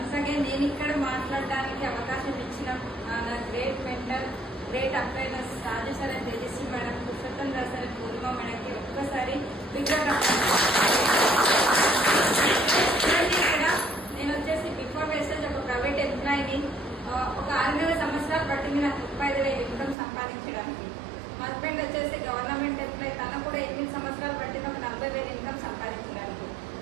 Once again నేను ఇక్కడ మాట్లాడడానికి అవకాశం ఇచ్చిన నా గ్రేట్ మెంటర్, గ్రేట్ అప్లైనర్స్ Raju sir and Tejaswi madam, Purushottam Rao sir, Purnima మేడంకి ఒక్కసారి ఇక్కడ నేను వచ్చేసి బిఫోర్ వేస్టేజ్ ఒక ప్రైవేట్ ఎంప్లాయీని. ఒక 6 సంవత్సరాలు పట్టింది నాకు 35,000 ఇన్కమ్ సంపాదించడానికి. మా హస్బెండ్ వచ్చేసి గవర్నమెంట్ ఎంప్లాయీ, తన కూడా 8 సంవత్సరాలు పట్టింది ఒక 40,000 ఇన్కమ్ సంపాదించడానికి.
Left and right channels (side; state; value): left; drops out; at 20.0 s